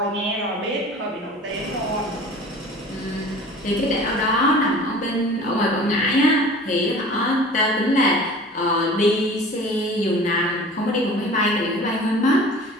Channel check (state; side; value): normal; both; correlation 0.42